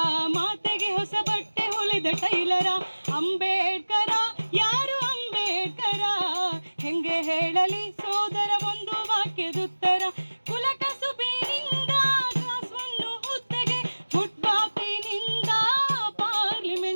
ಮಾತೆಗೆ ಹೊಸ ಬಟ್ಟೆ ಹೊಲೆದ ಟೈಲರ. ಅಂಬೇಡ್ಕರ ಯಾರು ಅಂಬೇಡ್ಕರ? ಹೆಂಗೆ ಹೇಳಲಿ ಸೋದರ ಒಂದು ವಾಕ್ಯದುತ್ತರ. ಕುಲ ಕಸುಬಿನಿಂದ ಕ್ಲಾಸ್ ಒನ್ನು ಹುದ್ದೆಗೆ, ಫುಟ್ಪಾತಿನಿಂದ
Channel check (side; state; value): both; inverted; correlation -1.00